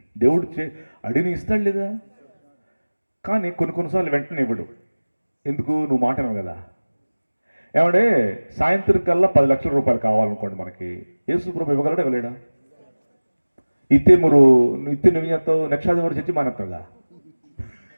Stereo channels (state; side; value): inverted; both; correlation -1.00